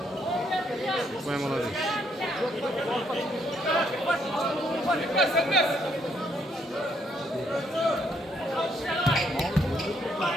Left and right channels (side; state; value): both; normal; correlation 0.72